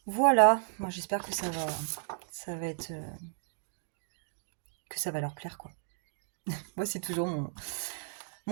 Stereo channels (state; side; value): silent; left; digital silence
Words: Voilà, moi j'espère que ça va être... que ça va leur plaire, quoi. Moi, c'est toujours